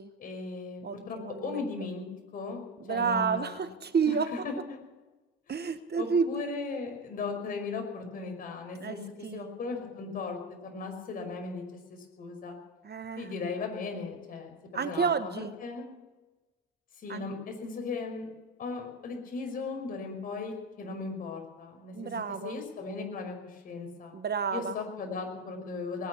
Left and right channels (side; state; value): both; normal; correlation 0.19